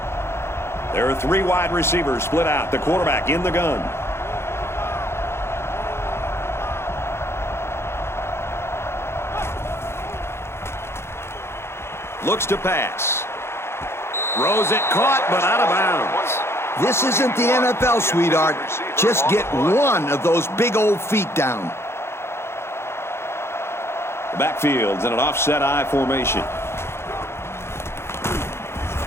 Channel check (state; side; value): late; right; 0.12 ms